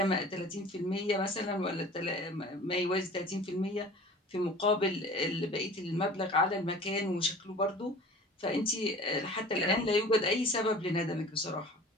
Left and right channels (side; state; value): both; normal; correlation 0.43